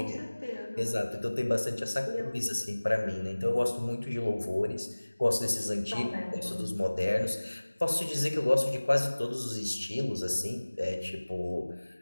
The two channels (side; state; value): both; inverted; correlation -1.00